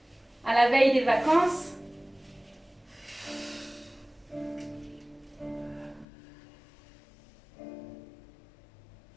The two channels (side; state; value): right; drops out; at 6.1 s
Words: À la veille des vacances.